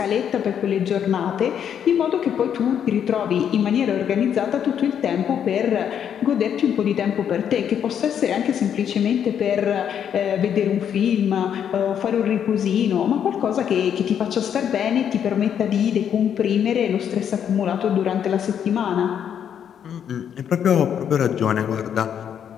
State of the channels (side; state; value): right; quieter; 8.7 dB